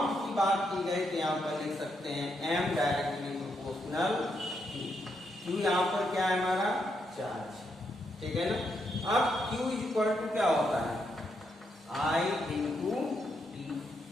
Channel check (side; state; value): both; normal; correlation 0.79